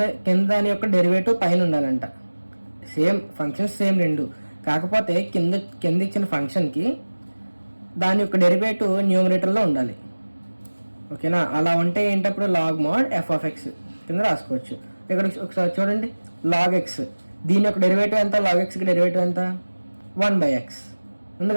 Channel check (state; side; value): inverted; both; correlation -1.00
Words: దాని యొక్క డెరివేటివ్ పైన ఉండాలంట. సేమ్ ఫంక్షన్స్ సేమ్ రెండు, కాకపోతే కింద ఇచ్చిన ఫంక్షన్కి దాని యొక్క డెరివేటివ్ న్యూమరేటర్లో ఉండాలి. ఓకేనా? అలా ఉంటే ఏంటప్పుడు log mod f of x కింద రాసుకోవచ్చు. ఇక్కడ ఒకసారి చూడండి, లాగ్ ఎక్స్ దీని యొక్క డెరివేటివ్ ఎంత? లాగ్ ఎక్స్కి డెరివేటివ్ ఎంత? 1 by x ఉంది